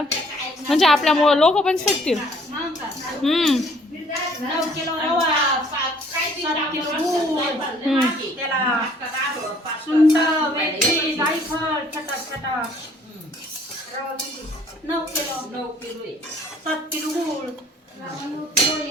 म्हणजे आपल्यामुळं लोक पण शिकतील.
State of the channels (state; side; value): normal; both; correlation 0.59